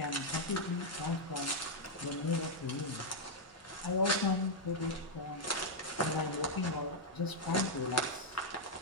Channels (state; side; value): normal; both; correlation -0.02